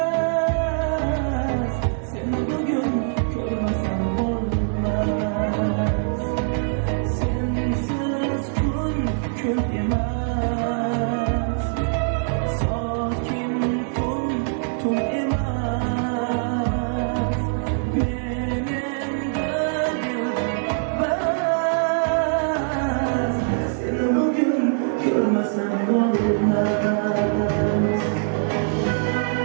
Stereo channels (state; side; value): silent; left; digital silence